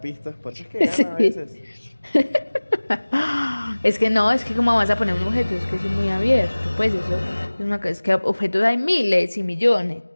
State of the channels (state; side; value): inverted; both; correlation -1.00